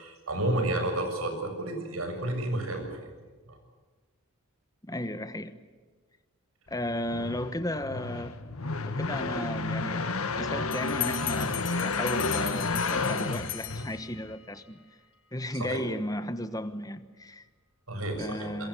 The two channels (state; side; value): normal; both; correlation 0.31